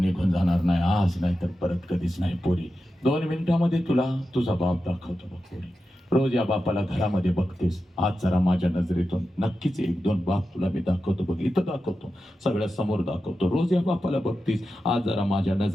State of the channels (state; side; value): normal; both; correlation 0.91